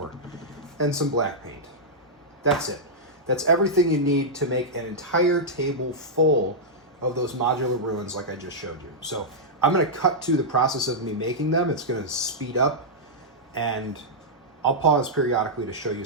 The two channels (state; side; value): normal; both; correlation -0.08